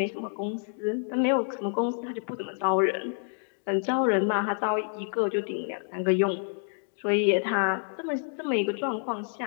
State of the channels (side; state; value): right; silent; 59 dB below the other